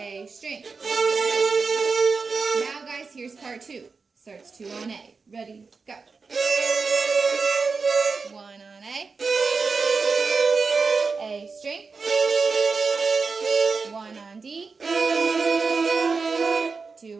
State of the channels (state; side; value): quieter; left; 4.6 dB